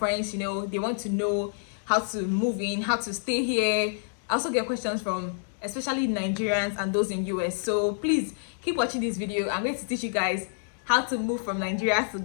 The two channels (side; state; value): right; silent; digital silence